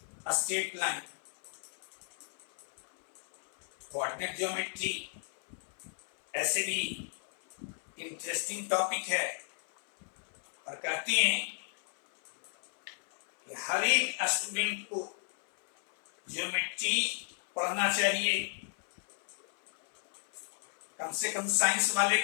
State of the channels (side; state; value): right; silent; 55 dB below the other